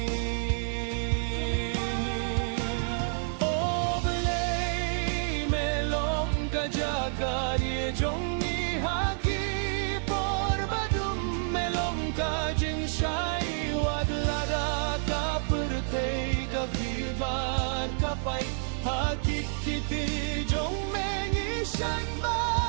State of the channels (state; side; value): silent; left; digital silence